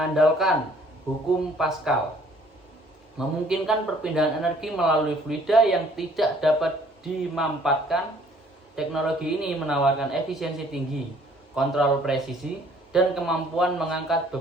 hukum Pascal memungkinkan perpindahan energi melalui fluida yang tidak dapat dimanfaatkan. Teknologi ini menawarkan efisiensi tinggi, kontrol presisi, dan kemampuan mengangkat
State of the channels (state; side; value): normal; both; correlation 0.58